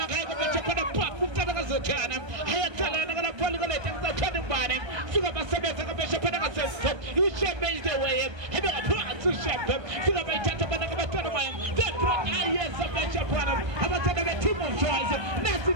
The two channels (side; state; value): left; late; 1.3 ms